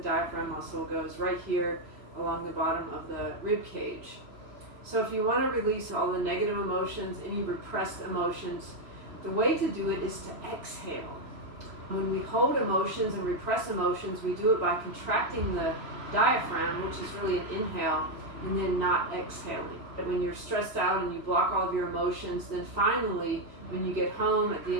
muscle goes right here along the bottom of the rib cage. So if you want to release all the negative emotions, any repressed emotions, the way to do it is to exhale. When we hold emotions and repress emotions, we do it by contracting the diaphragm, which is really an inhale, and then not exhaling. But when you're stressed out and you block all of your emotions, then finally, when you get home at the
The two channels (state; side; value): late; left; 3.0 ms